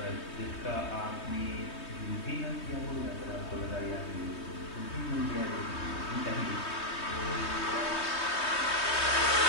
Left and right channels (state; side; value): late; right; 3.2 ms